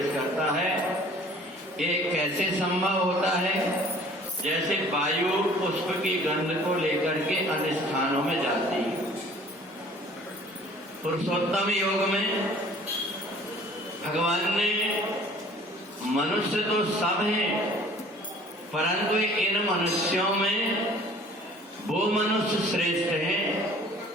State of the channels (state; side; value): normal; both; correlation 0.51